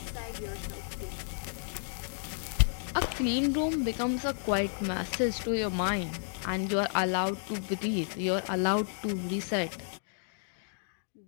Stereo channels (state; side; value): silent; right; digital silence